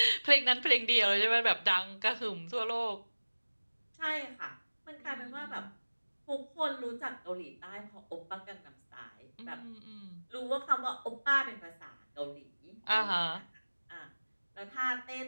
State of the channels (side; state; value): both; inverted; correlation -1.00